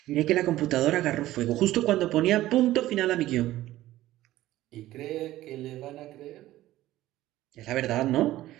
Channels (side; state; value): left; quieter; 15.4 dB